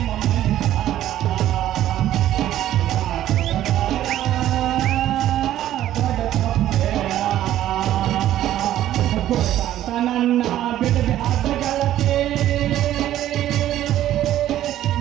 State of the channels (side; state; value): left; quieter; 12.7 dB